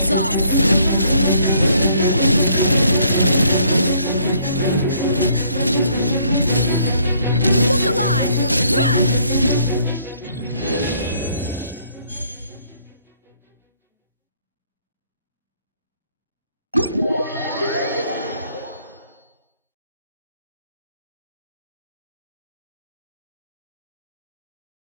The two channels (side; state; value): both; inverted; correlation -0.65